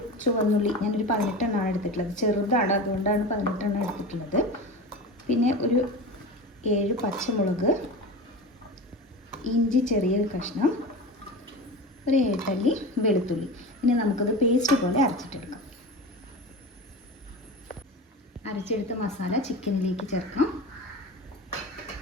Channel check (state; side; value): normal; both; correlation 0.29